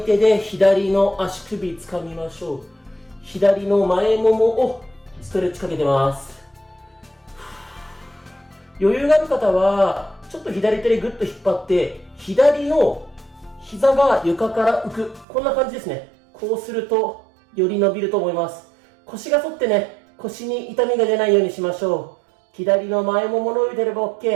で左の足首つかみましょう。左の前ももをストレッチかけてます。余裕がある方はちょっと左手でグッと引っ張って左の膝が床から浮く、こんな感じですね。こうするとより伸びると思います。腰が反ってね、腰に痛みが出ないようにしましょう。左の前もも伸びてれば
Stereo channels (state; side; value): drops out; left; at 15.2 s